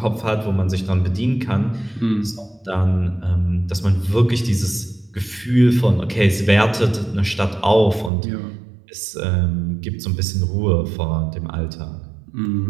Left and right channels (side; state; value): left; drops out; at 8.1 s